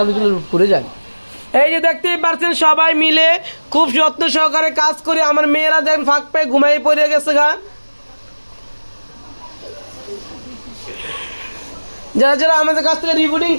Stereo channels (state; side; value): inverted; both; correlation -1.00